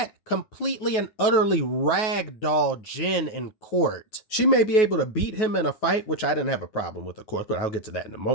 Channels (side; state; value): right; late; 9.3 ms